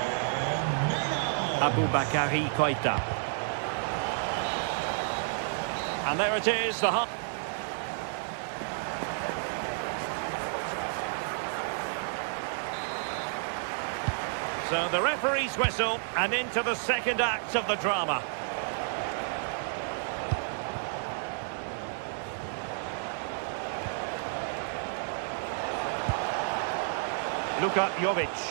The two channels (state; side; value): silent; left; digital silence